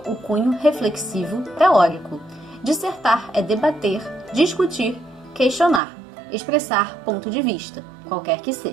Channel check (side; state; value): left; drops out; at 5.8 s